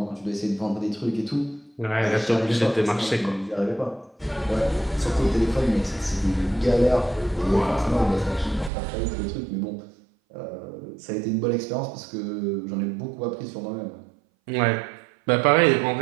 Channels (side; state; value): left; drops out; at 8.7 s